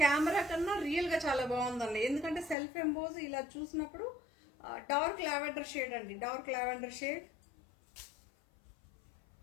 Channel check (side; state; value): right; drops out; at 2.6 s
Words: camera కన్నా రియల్గా చాలా బాగుందండి. ఎందుకంటే సెల్ఫ్ ఎంబోజ్ ఇలా చూసినప్పుడు డార్క్ లావెండర్ షేడ్ అండి, డార్క్ లావెండర్ షేడ్